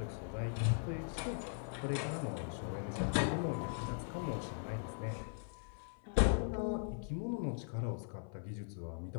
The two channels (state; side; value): silent; right; 51 dB below the other